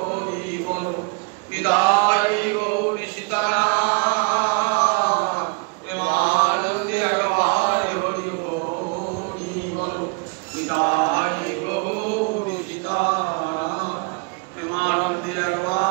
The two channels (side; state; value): left; quieter; 33.1 dB